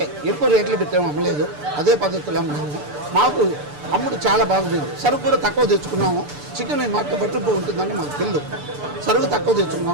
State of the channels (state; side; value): late; left; 6.8 ms